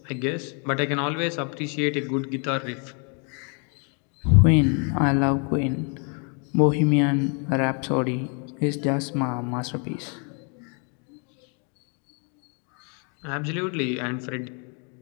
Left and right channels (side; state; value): right; quieter; 37.9 dB